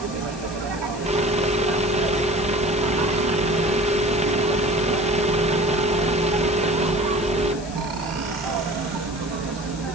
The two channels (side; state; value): left; noise; hiss, 16 dB below the sound